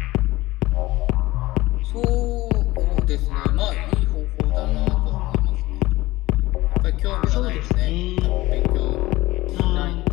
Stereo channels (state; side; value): quieter; right; 18.7 dB